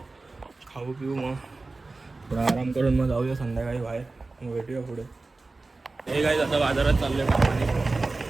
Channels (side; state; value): left; quieter; 3.5 dB